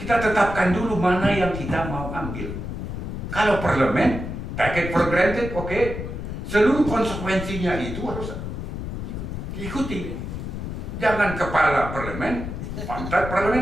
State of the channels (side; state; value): left; noise; rumble, 6 dB below the sound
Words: tetapkan dulu mana yang kita mau ambil. Kalau parlemen, take it for granted, oke. Seluruh konsekuensinya itu harus diikuti. Jangan kepala parlemen, pantat